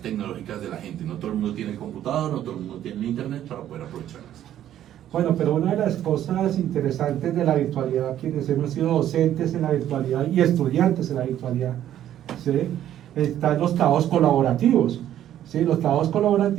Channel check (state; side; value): quieter; left; 11.5 dB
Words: tecnológicas de la gente. No todo el mundo tiene el computador, no todo el mundo tiene el internet para poder aprovecharlas. Bueno, pero una de las cosas interesantes de la virtualidad, quienes hemos sido docentes en la virtualidad y estudiantes en la virtualidad, ¿sí?, están los trabajos colaborativos. ¿Sí? Los trabajos